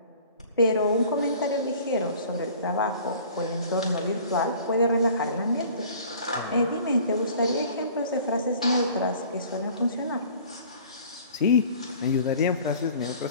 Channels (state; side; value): inverted; both; correlation -0.48